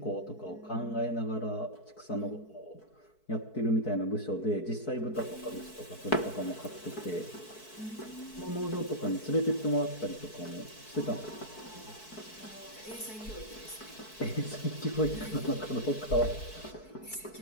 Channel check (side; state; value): right; late; 4.6 ms